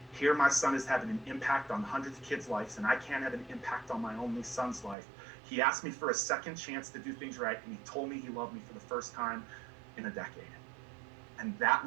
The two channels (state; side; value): drops out; left; at 5.0 s